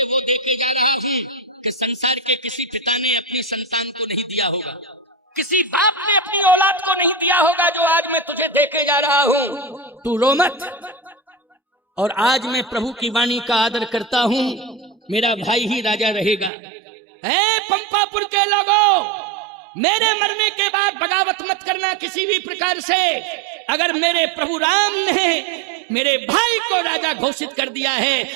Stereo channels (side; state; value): left; drops out; at 16.5 s